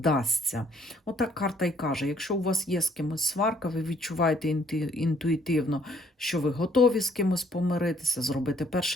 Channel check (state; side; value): normal; both; correlation 0.64